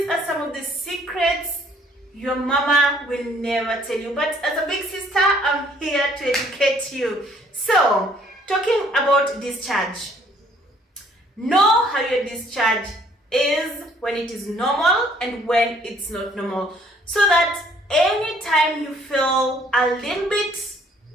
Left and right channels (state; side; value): normal; both; correlation 0.61